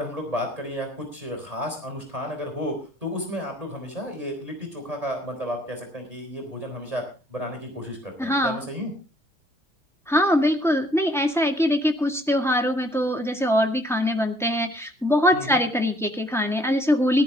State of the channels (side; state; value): both; normal; correlation 0.62